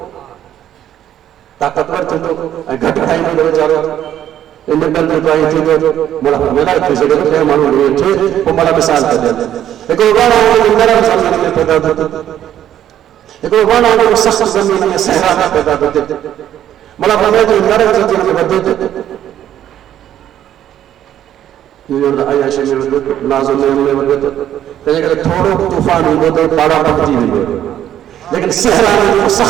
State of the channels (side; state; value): left; quieter; 11.2 dB